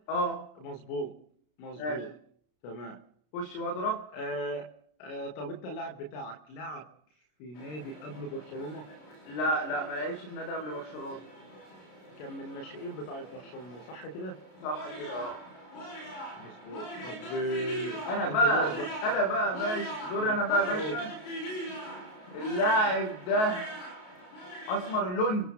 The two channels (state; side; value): late; right; 33 ms